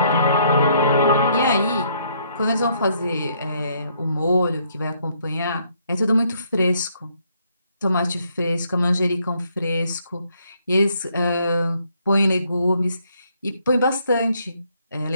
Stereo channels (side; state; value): both; inverted; correlation -0.69